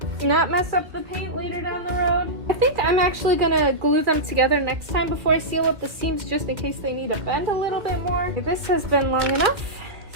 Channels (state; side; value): late; left; 1.9 ms